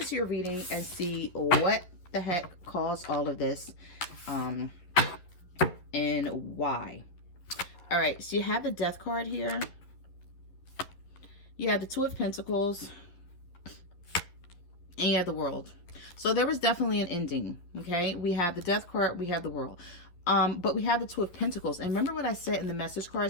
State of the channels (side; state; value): right; late; 11 ms